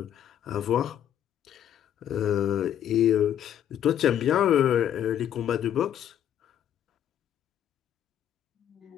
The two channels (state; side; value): quieter; right; 10.3 dB